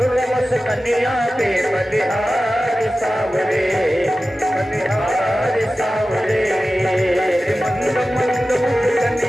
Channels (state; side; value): normal; both; correlation 0.95